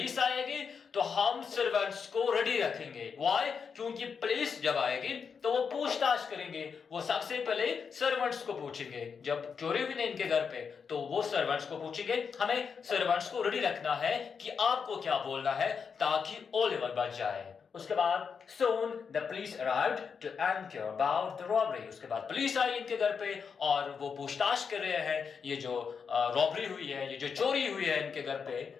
आएगी तो हम सर्वेंट्स को रेडी रखेंगे. Why? क्योंकि पुलिस जब आएगी तो वो पूछताछ करेंगे. वो सबसे पहले सर्वेंट्स को पूछेंगे. जब चोरी हुई ना इनके घर पे तो वो सर्वेंट्स को पूछेंगे. हमें सर्वेंट्स को रेडी रखना है कि आपको क्या बोलना है ताकि ओलिवर बच जाए. उसके बाद soon the police arrived to inquire about the robbery. उसके बाद पुलिस आई इनके घर पे और वो पूछताछ कर रहे हैं ये जो रॉबरी हुई है, ये जो चोरी हुई है इनके घर पे.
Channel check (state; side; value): quieter; right; 6.1 dB